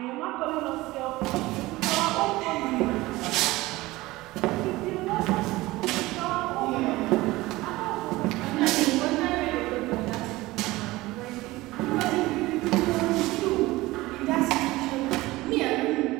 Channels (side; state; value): left; quieter; 19.3 dB